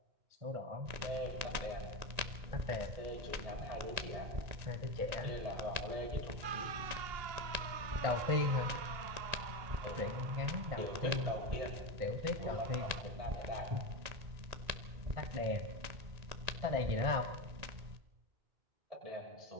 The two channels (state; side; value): late; left; 1.9 ms